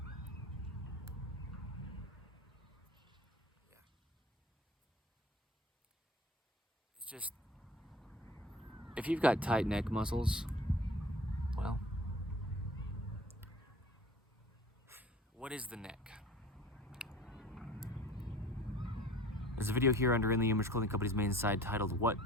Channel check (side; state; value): both; normal; correlation 0.44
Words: Just, if you've got tight neck muscles, well, what is the neck? There's a video here under In the Image Clothing Company's main side titled, What